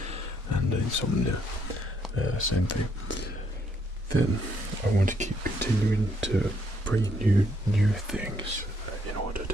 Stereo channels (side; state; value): both; normal; correlation 0.71